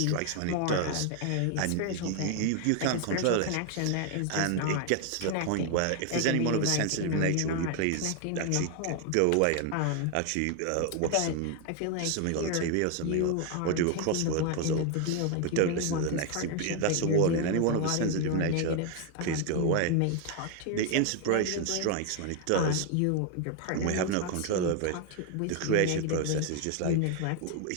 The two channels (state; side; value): different; both; correlation 0.01